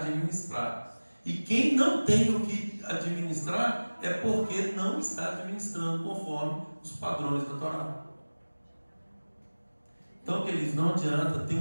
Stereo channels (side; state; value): both; inverted; correlation -1.00